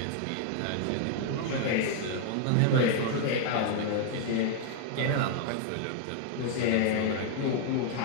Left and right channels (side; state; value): both; different; correlation 0.00